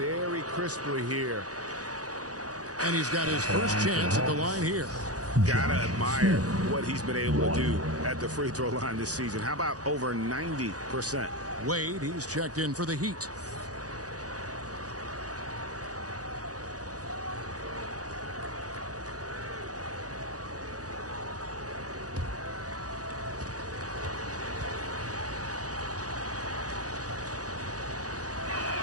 crisply here. And he's got his first chance at the line here. Gotta admire what he's been able to do at the free throw line this season. How about over 90%? Wade, he's checked in for the Heat.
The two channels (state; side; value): late; left; 0.67 ms